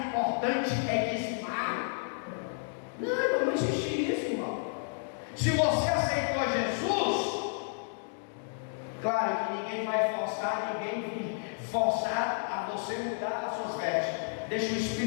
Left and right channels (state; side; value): silent; right; digital silence